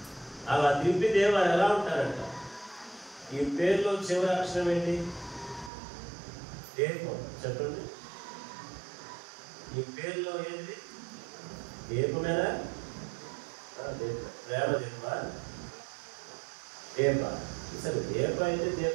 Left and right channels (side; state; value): left; drops out; at 5.7 s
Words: ఈ పేరులో చివరి అక్షరం ఏంటి? దీపం. చెప్పండి, ఈ పేరులో ఏంటి? దీపమేనా? ప్రేమ దీపమా? దీప. సరే, దీప అయితే